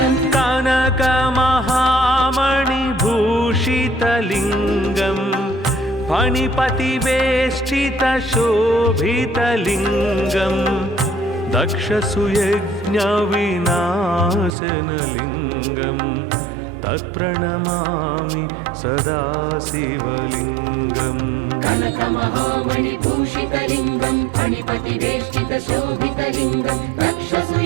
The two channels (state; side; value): drops out; left; at 14.5 s